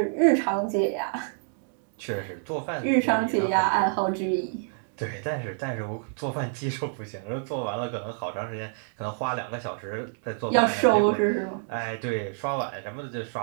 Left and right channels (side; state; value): left; silent; digital silence